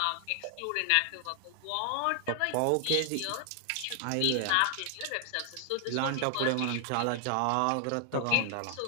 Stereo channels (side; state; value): both; different; correlation 0.00